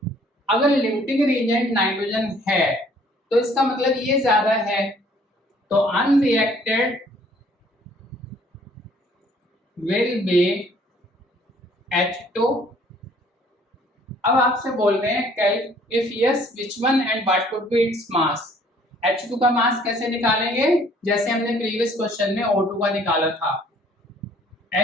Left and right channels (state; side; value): normal; both; correlation 0.59